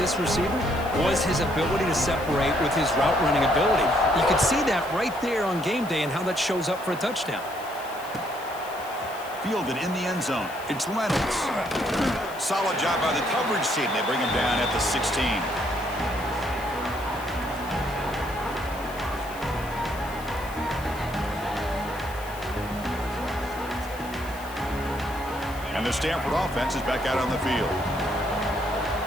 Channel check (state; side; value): noise; left; hiss, 18 dB below the sound